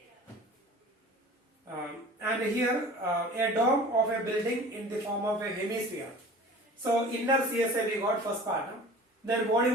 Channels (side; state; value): both; normal; correlation 0.42